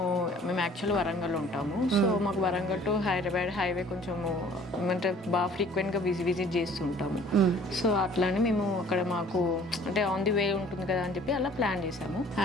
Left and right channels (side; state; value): both; normal; correlation 0.53